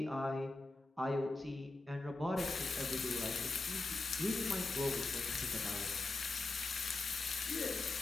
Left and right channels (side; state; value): right; quieter; 3.2 dB